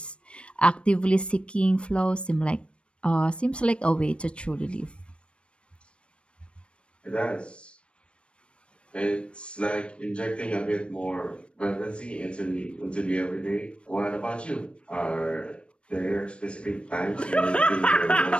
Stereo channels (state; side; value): late; right; 0.059 ms